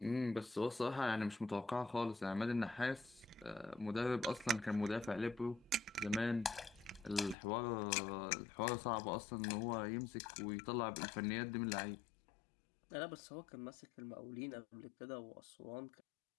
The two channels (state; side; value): drops out; right; at 7.4 s